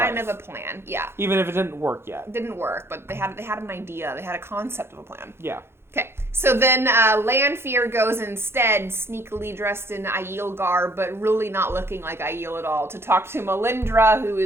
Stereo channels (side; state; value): left; late; 0.12 ms